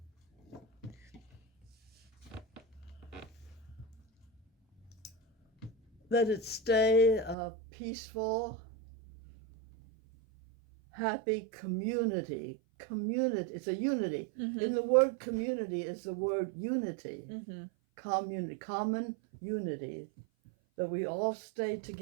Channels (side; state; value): left; drops out; at 7.4 s